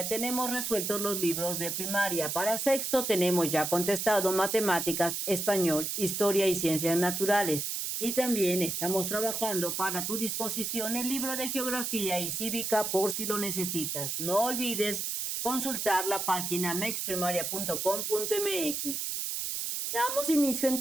tenemos resueltos los libros de primaria. Para sexto tenemos ya contestado matemáticas, español, historia y ciencias naturales. Y también estamos trabajando para tu disposición el libro de geografía y cívica por si lo necesitas. No olvides consultar la página mexprimaria.com.mx. Damos inicio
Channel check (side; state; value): right; noise; hiss, 2 dB below the sound